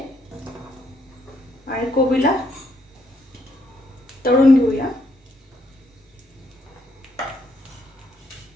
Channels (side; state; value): both; normal; correlation 0.73